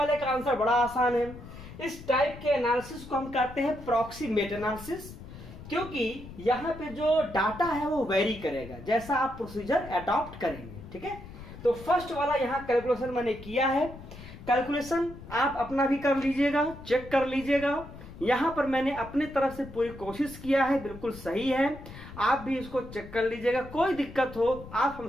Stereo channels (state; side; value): noise; left; rumble, 15 dB below the sound